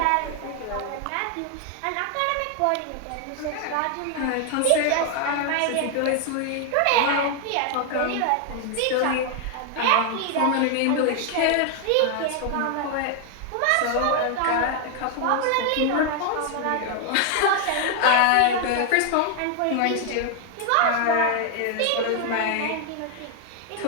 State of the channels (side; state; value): both; different; correlation 0.00